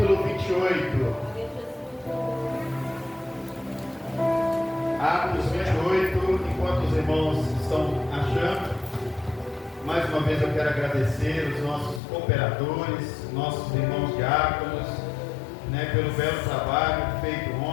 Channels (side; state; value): right; drops out; at 12.0 s